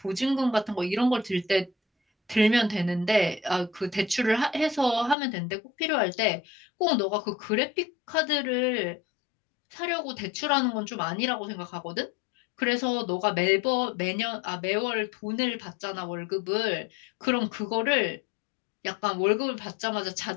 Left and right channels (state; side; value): drops out; right; at 5.2 s